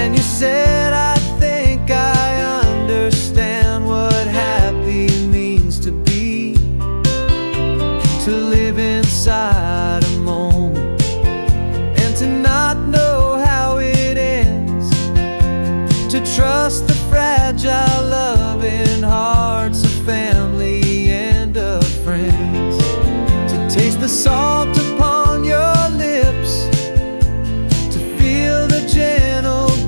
you said, I think I understand what happy means to be, to live inside a moment and to not know how it ends, to trust the fragile loving hearts of family and of friends, to taste the salt upon your lips, to feel the gentle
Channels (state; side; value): inverted; both; correlation -1.00